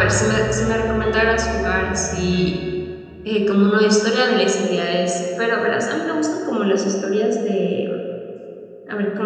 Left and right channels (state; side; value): identical; both; correlation 1.00